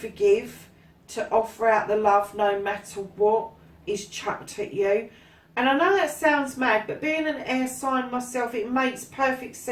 to offer out the love no matter what is chucked at you. And I know that sounds mad, but being an air sign myself, it makes perfect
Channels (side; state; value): both; identical; correlation 1.00